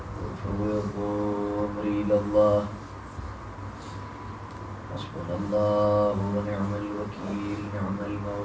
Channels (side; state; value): both; identical; correlation 1.00